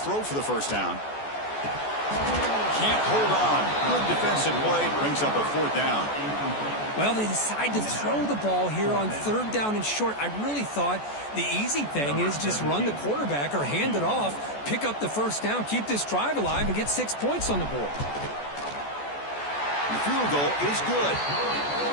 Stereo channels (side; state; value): right; late; 14 ms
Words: for the first down. Can't hold on. Good defensive play, brings up a 4th down. Well, they decide to throw the ball here on 3rd down and short. I really thought the easy thing is just run the quarterback or hand it off, pick up the first down, keep this drive alive, and get 6 points on the board. The field goal is good.